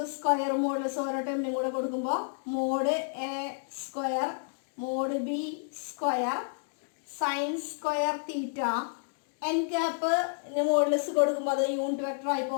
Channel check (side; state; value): right; silent; digital silence